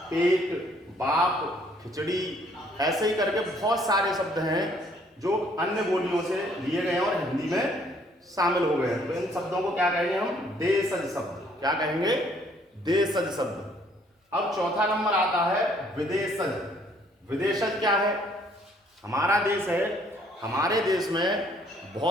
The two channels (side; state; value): both; normal; correlation 0.63